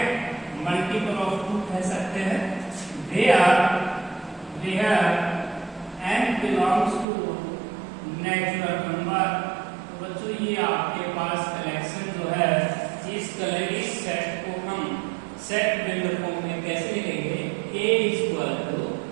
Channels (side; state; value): left; drops out; at 7.1 s